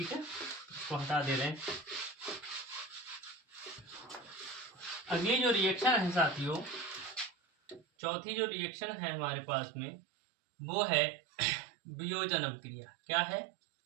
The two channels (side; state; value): left; drops out; at 7.8 s